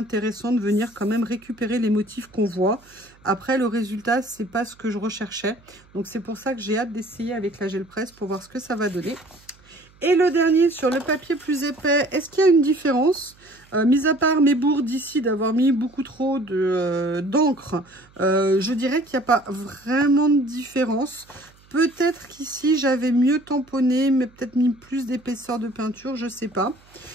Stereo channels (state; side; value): noise; right; hum, 29 dB below the sound